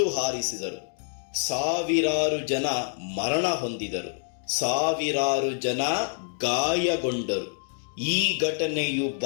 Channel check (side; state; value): right; silent; 59 dB below the other